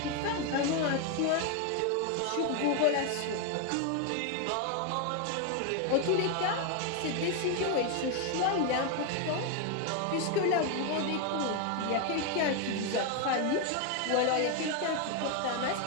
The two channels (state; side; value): different; both; correlation 0.01